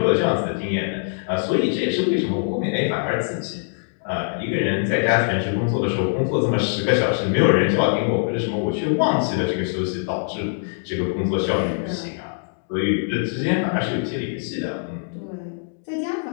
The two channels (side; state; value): right; silent; digital silence